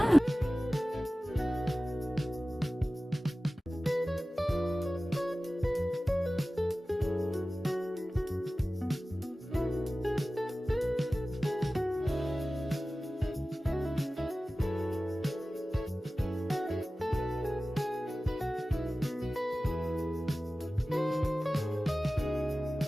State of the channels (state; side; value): normal; both; correlation 0.96